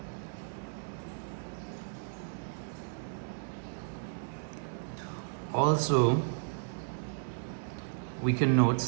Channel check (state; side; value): silent; left; 55 dB below the other